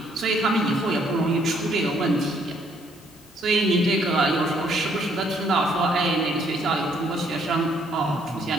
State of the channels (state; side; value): normal; both; correlation 0.67